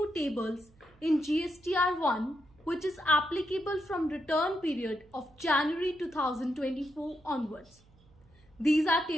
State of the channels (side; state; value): right; noise; hum, 29 dB below the sound